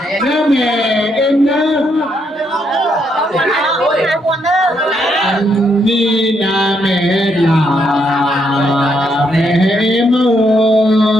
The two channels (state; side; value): normal; both; correlation 0.76